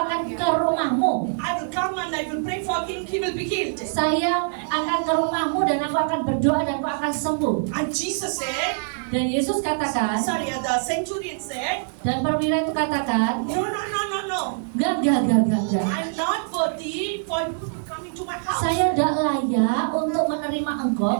ke rumahmu. I will come and I will pray for him. He will be healed. Saya akan ke rumahmu dan aku akan berdoa dan aku akan sembuh. And Jesus said, Dan Yesus katakan, the centurion said, dan perwira itu katakan, no. enggak. I'm not worthy for you to come into my house. Saya tidak layak untuk menerima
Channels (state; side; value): silent; left; 63 dB below the other